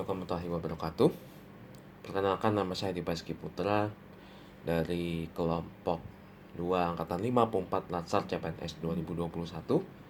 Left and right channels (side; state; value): both; identical; correlation 1.00